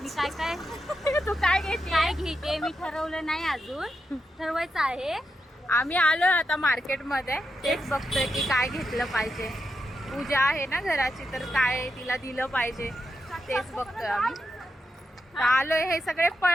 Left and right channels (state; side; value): normal; both; correlation 0.85